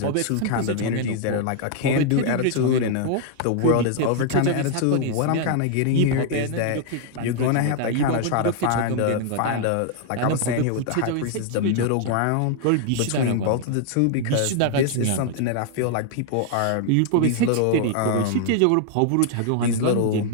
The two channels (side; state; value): both; different; correlation 0.00